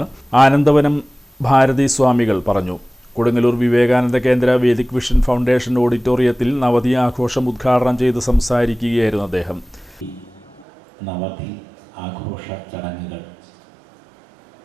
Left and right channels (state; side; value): drops out; left; at 10.7 s